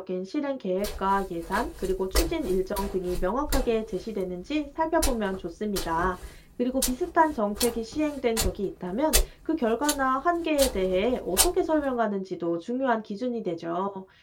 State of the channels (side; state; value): both; identical; correlation 1.00